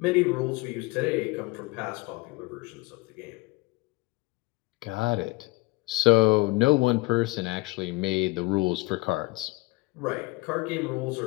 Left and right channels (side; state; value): right; quieter; 22.6 dB